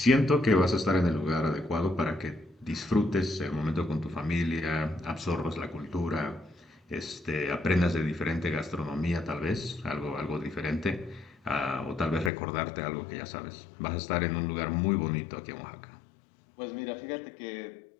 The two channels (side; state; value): right; drops out; at 12.3 s